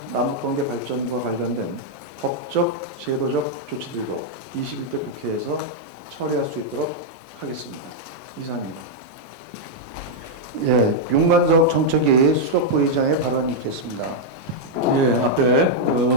남북관계 발전과 관련된 법적, 제도적 조치들도 21대 국회에서 처리할 수 있도록 하겠습니다. 이상입니다. 예, 윤관석 정책위 수석부의장의 발언이 있겠습니다. 예, 앞에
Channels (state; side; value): late; left; 5.9 ms